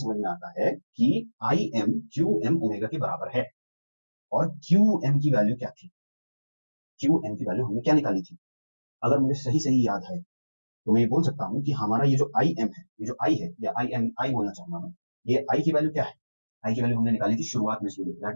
में आता है कि I M Q M omega के बराबर है। और क्यू एम की वैल्यू क्या थी, क्यू एम की वैल्यू हमने क्या निकाली थी, अगर मुझे सही सही याद है तो मैं ये बोल सकता हूँ कि हमारा ये जो आई एम है, ये जो आई है, या आई एम आई बोलना चाहूंगा मैं, ये आई की वैल्यू क्या है, आई की वैल्यू हमने निकाली थी शुरुआत में student, that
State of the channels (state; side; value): inverted; both; correlation -1.00